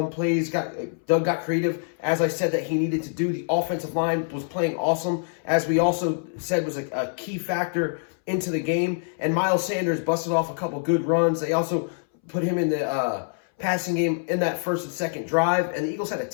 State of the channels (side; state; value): right; silent; 62 dB below the other